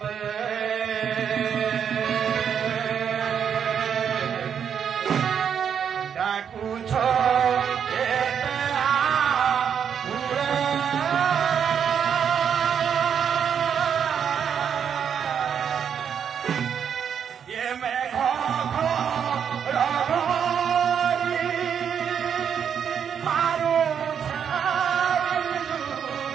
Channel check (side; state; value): left; quieter; 7.9 dB